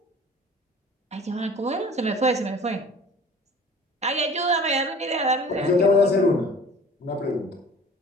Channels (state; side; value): normal; both; correlation 0.45